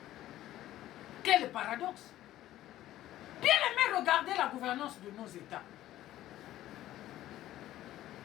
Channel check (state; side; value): quieter; right; 14.0 dB